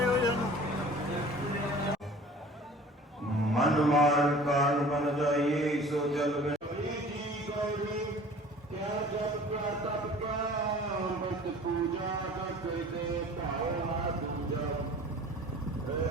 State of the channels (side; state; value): both; normal; correlation 0.46